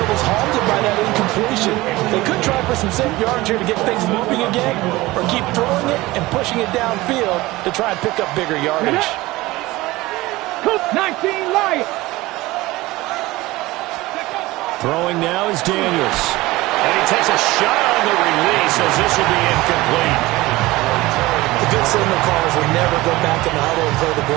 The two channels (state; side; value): quieter; left; 19.4 dB